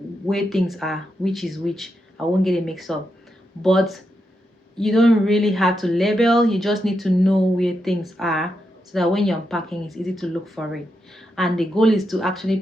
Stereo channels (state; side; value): normal; both; correlation 0.85